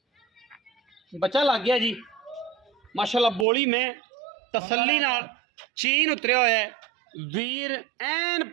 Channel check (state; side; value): drops out; left; at 3.5 s